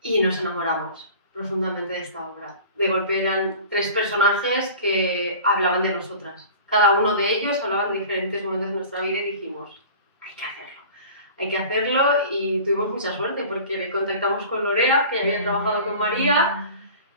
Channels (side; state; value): both; inverted; correlation -0.41